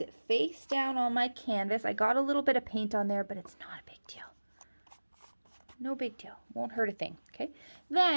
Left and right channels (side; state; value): both; inverted; correlation -1.00